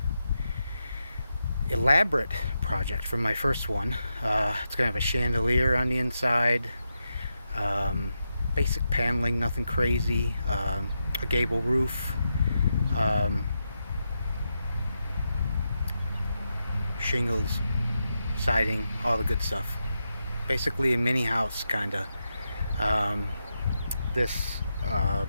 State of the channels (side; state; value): both; inverted; correlation -0.86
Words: elaborate project for my first one. It's going to have a chandelier on the inside, basic paneling, nothing crazy, a gable roof, shingles, siding, all the good stuff. Basically a mini house, kinda. This